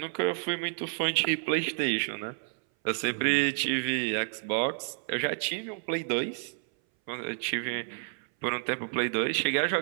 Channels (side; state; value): left; silent; 58 dB below the other